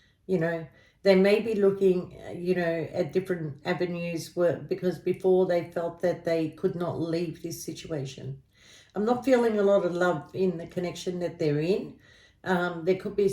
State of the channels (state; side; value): identical; both; correlation 1.00